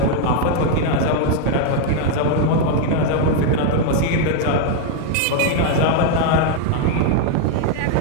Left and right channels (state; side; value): different; both; correlation 0.00